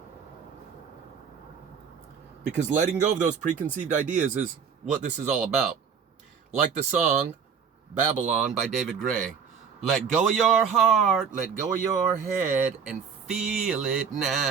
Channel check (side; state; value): left; quieter; 6.7 dB